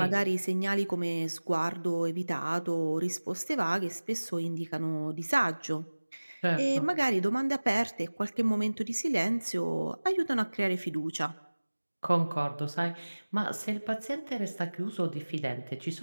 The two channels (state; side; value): inverted; both; correlation -1.00